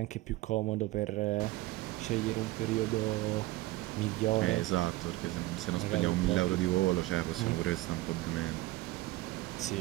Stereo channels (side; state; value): left; quieter; 18.4 dB